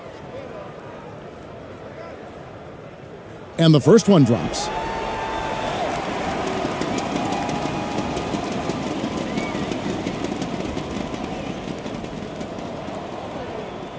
And the first one drops.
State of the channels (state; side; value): identical; both; correlation 1.00